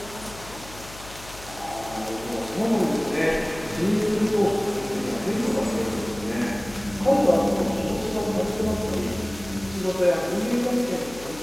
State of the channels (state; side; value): noise; left; hum, 17 dB below the sound